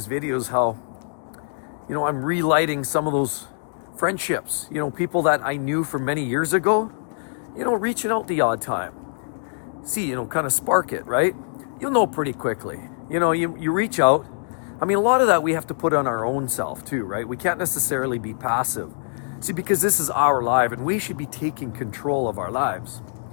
videos how, I'm relighting some of those friendships, people that I knew from many years ago, reaching out the odd time. See, kind of spark it, right? You'll know pretty quickly. You reach out. I mean, a lot of that we have to put on our own self too, right? We can't necessarily be passive. See, because this is our life and we should be taking control of our lives.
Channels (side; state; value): right; silent; digital silence